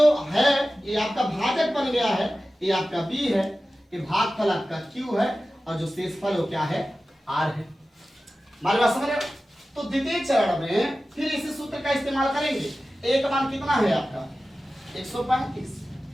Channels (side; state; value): both; normal; correlation 0.95